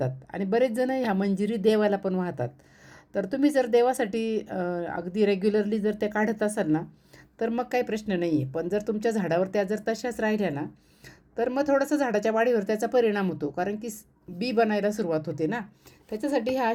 आणि बरेच जण ह्या मंजिरी देवाला पण वाहतात. तर तुम्ही जर देवासाठी अगदी रेग्युलरली जर त्या काढत असाल ना तर मग काही प्रश्न नाही आहे. पण जर तुमच्या झाडावर त्या जर तशाच राहिल्या ना तर मग थोडंसं झाडाच्या वाढीवर त्याचा परिणाम होतो, कारण की बी बनायला सुरुवात होते ना. त्याच्यासाठी ह्या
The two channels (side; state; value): both; identical; correlation 1.00